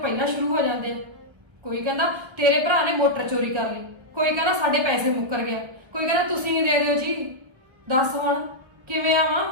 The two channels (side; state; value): left; late; 1.1 ms